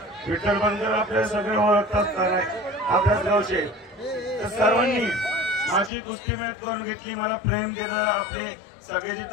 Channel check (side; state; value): right; drops out; at 5.9 s